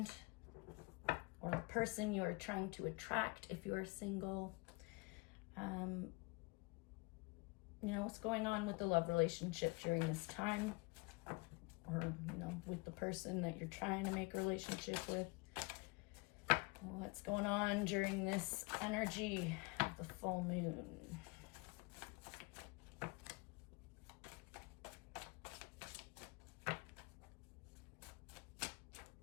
or the person you are trying to attract if you are single. You know, what's going on with the love relationship during this time, or, you know, with the person that you're trying to make a relationship with. What's going on during this energy of the full moon?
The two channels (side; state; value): right; quieter; 26.5 dB